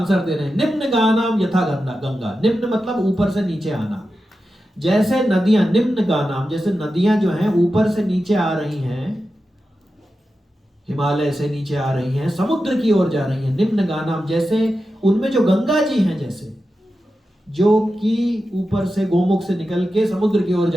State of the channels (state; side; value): normal; both; correlation 0.91